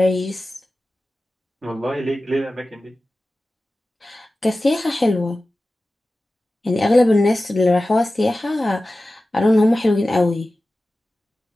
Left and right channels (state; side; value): normal; both; correlation 0.95